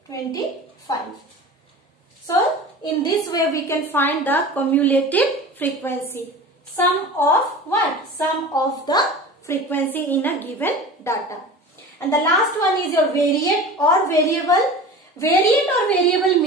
25. So in this way we can find the cumulative frequency. Sum of what? Sum of the frequency in a given data. And the last one is your variate or variable. Variate or variable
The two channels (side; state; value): both; normal; correlation 0.36